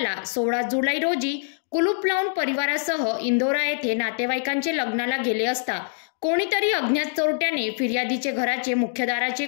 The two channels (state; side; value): silent; right; digital silence